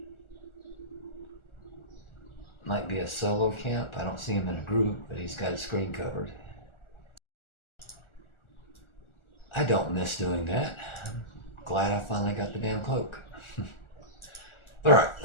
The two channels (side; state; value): right; late; 1.4 ms